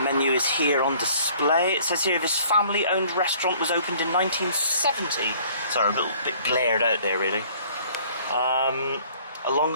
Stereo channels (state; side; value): inverted; both; correlation -0.55